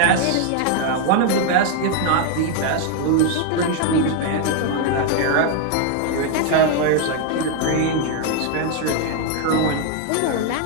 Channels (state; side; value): different; both; correlation 0.00